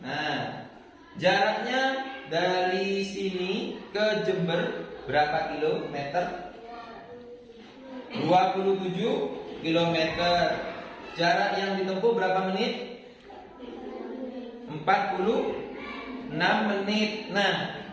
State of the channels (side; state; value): both; identical; correlation 1.00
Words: Nah, jaraknya dari sini ke Jember berapa kilometer? 27 kilometer. Jarak yang ditempuh berapa menit? 46 menit. Nah,